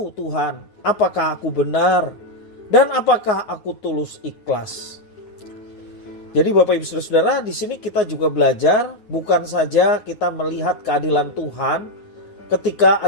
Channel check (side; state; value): right; late; 9.4 ms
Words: Tuhan, apakah aku benar dan apakah aku tulus ikhlas. Jadi Bapak Ibu Saudara, di sini kita juga belajar bukan saja kita melihat keadilan Tuhan ketika